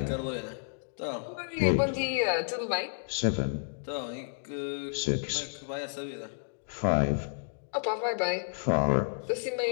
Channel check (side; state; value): right; silent; digital silence